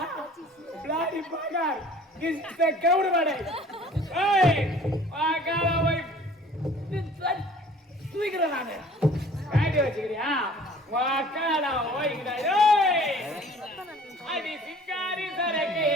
பிளாடி பாகார். கிஸ்த கவுடுவாடே. ஏய் வாக்காடா போய் தூக்குறடா நானே. காடி வச்சிக்கிறியா? வாக்காடா ஓய்ங்கடா ஏய். அடி சிங்காரி சரக்கே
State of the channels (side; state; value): both; normal; correlation 0.50